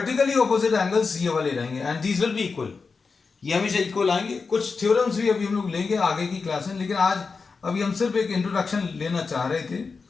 ऑपोजिट एंगल्स ये वाले रहेंगे and these will be equal. ये हमेशा इक्वल आएंगे। कुछ थ्योरम्स भी अभी हम लोग लेंगे आगे की क्लास में, लेकिन आज अभी हम सिर्फ एक इंट्रोडक्शन लेना चाह रहे थे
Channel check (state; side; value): quieter; right; 4.7 dB